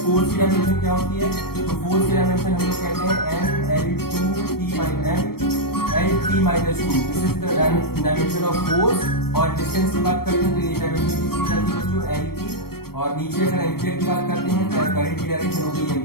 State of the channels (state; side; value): late; right; 0.94 ms